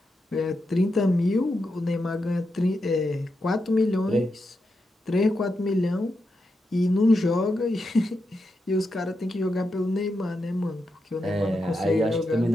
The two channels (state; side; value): normal; both; correlation 0.86